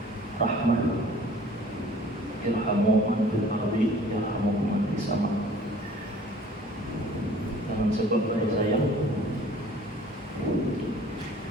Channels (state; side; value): normal; both; correlation 0.51